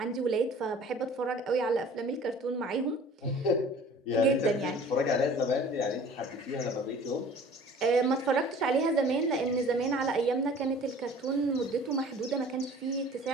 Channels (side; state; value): both; normal; correlation 0.47